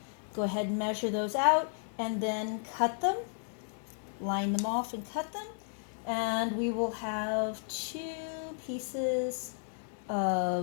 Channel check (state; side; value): silent; right; 55 dB below the other